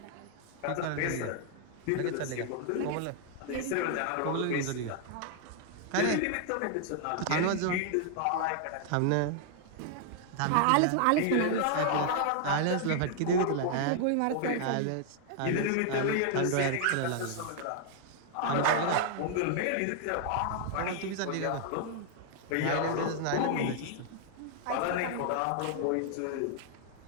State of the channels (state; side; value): different; both; correlation 0.00